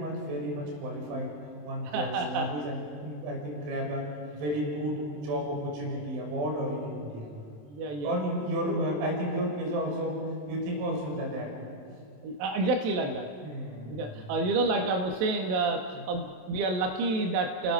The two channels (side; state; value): left; late; 27 ms